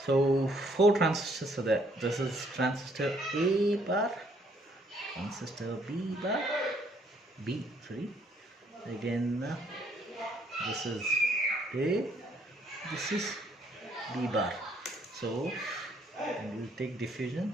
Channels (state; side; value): normal; both; correlation 0.67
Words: So 4 transistors are there. This is transistor A bar, transistor B bar, again this is A, this is B bar. So we'll take diffusion.